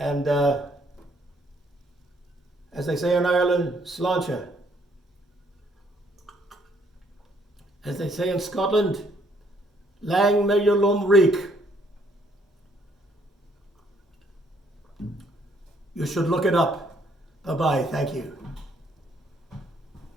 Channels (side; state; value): both; normal; correlation 0.67